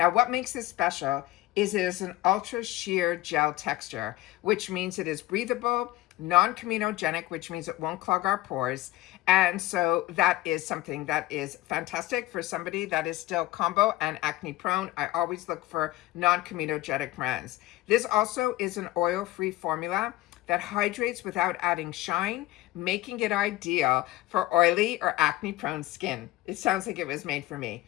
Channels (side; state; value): right; quieter; 17.0 dB